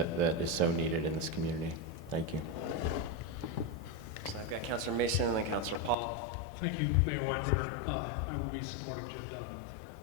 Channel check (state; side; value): drops out; right; at 6.0 s